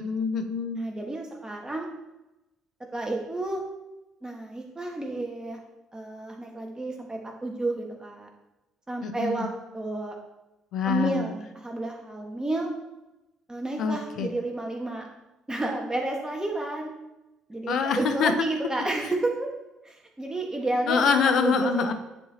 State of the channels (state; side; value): normal; both; correlation 0.70